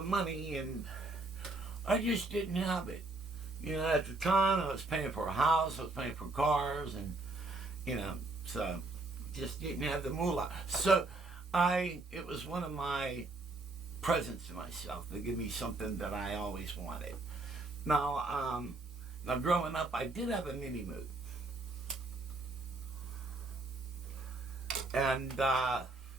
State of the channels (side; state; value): left; quieter; 3.1 dB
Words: money, and I just didn't have it. You know, at the time, I was paying for a house, I was paying for cars, and, you know, so just didn't have the moolah. So it was one of my presents to myself to give me something that I always wanted. Now growing up, I did have a mini Moog. And at